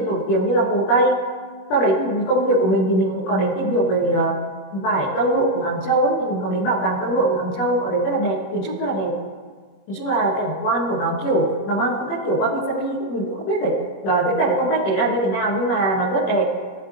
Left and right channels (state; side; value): late; right; 21 ms